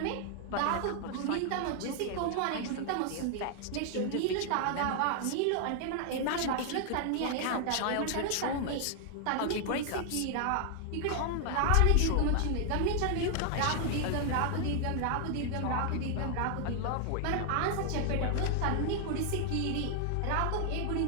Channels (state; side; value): different; both; correlation 0.00